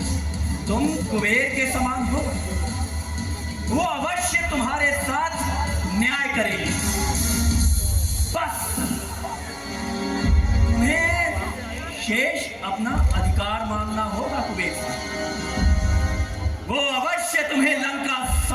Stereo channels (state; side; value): identical; both; correlation 1.00